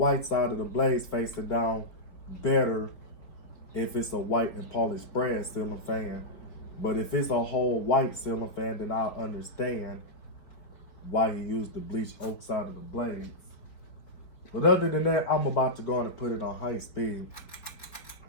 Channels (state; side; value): late; right; 4.4 ms